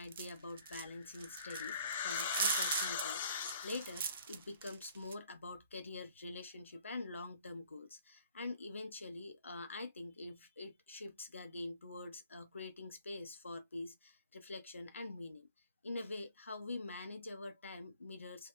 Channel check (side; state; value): both; inverted; correlation -0.57